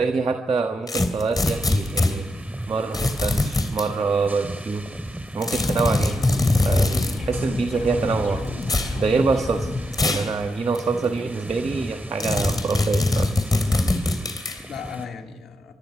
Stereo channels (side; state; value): both; normal; correlation 0.83